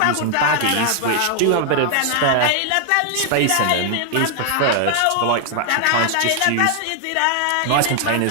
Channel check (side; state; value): both; different; correlation 0.00